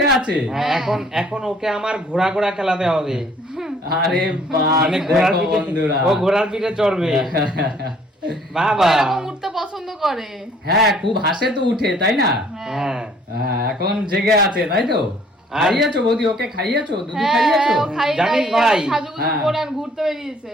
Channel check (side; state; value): both; normal; correlation 0.59